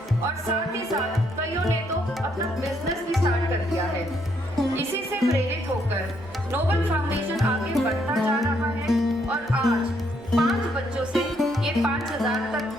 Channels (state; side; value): normal; both; correlation 0.73